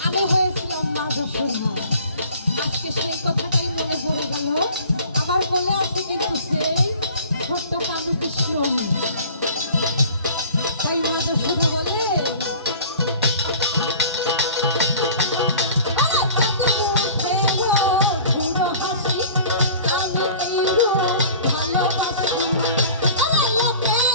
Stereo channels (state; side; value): inverted; both; correlation -0.45